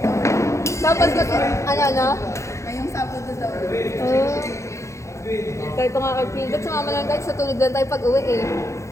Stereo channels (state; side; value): late; right; 0.14 ms